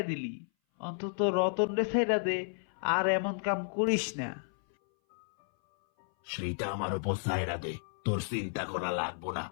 দিলি, অন্তত রতন রে ছাইরা দে, আর এমন কাম করিস না। সেইটা আমার উপর সায়রা দে, তোর চিন্তা করা লাগবো না,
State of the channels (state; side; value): silent; right; 56 dB below the other